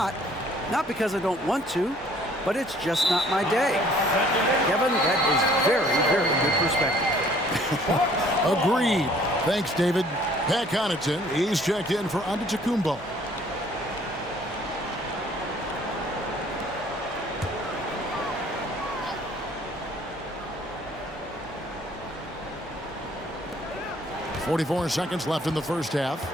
Not because I don't want to, but it's just not my day. Kevin, that is very, very good perspective. Agreed. Thanks, David. Pat Connaughton, he's checked in for Antetokounmpo. .44 seconds left in the first half.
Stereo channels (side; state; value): both; normal; correlation 0.57